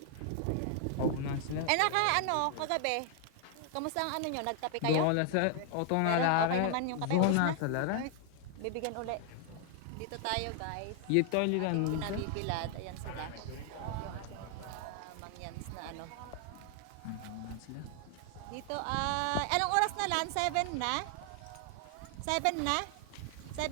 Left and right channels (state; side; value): different; both; correlation 0.00